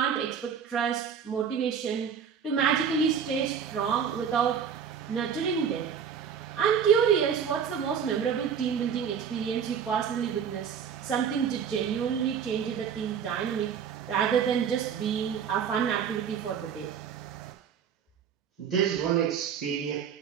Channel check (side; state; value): left; quieter; 7.5 dB